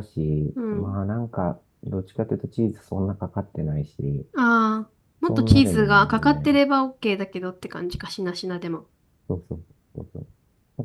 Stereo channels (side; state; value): both; identical; correlation 1.00